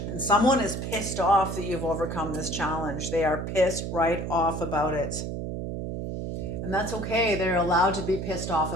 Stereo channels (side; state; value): right; noise; hum, 4 dB below the sound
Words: And someone is pissed off that you've overcome this challenge. They are pissed right off about it. And that's okay. They're allowed to be pissed off